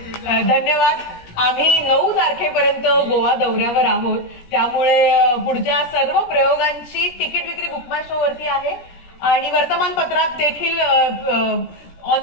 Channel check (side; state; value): right; late; 17 ms